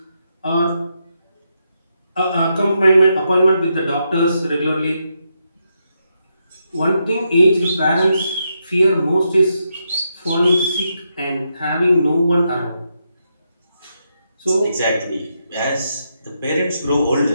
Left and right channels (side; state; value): both; inverted; correlation -0.82